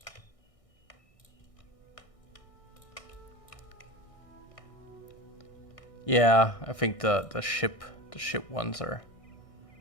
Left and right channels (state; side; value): late; right; 1.6 ms